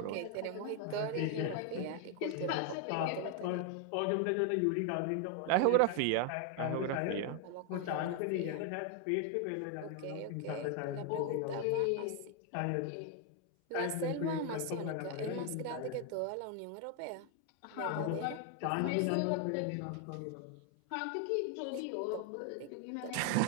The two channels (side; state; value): both; different; correlation 0.01